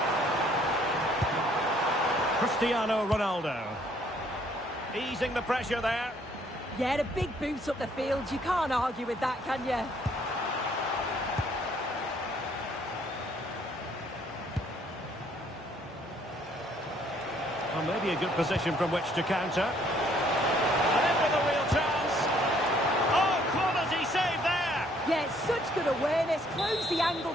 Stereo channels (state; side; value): normal; both; correlation 0.64